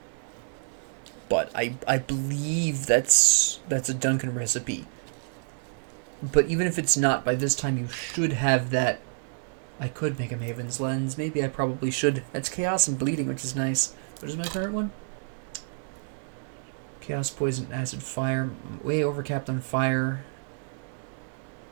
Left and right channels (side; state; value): left; silent; digital silence